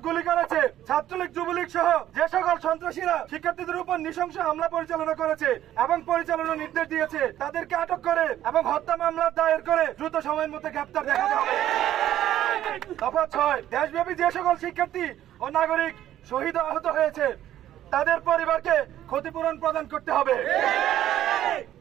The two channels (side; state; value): left; quieter; 12.3 dB